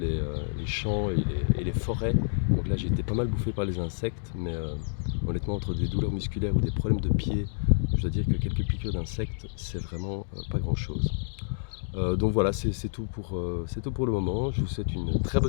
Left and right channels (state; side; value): silent; right; digital silence